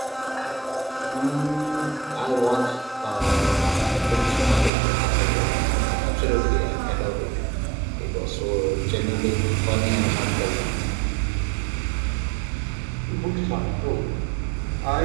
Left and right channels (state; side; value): drops out; left; at 4.7 s